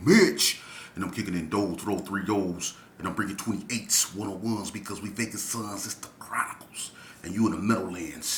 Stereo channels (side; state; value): both; identical; correlation 1.00